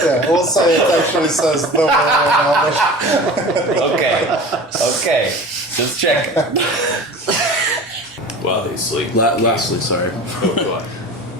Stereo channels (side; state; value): both; normal; correlation 0.38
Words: we'll say it actually says the word in Elvish. Okay. Just check. While they sleep. Lastly, sorry. Oh, go on.